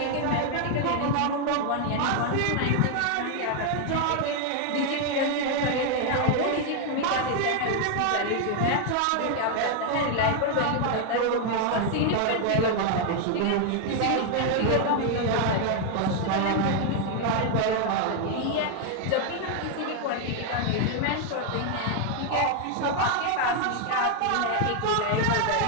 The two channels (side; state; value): both; different; correlation 0.00